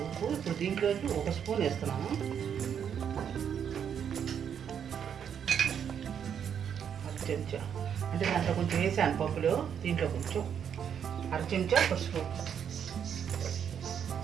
ఉప్పు. ఇప్పుడు దీంట్లోకి 1 స్పూన్ వేస్తున్నాను. చెంచా అంటే దాంట్లో కొంచెం వేసాను పప్పులో, దీంట్లో కొంచెం 1/2 చెంచా పసుపు,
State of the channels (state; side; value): quieter; left; 8.2 dB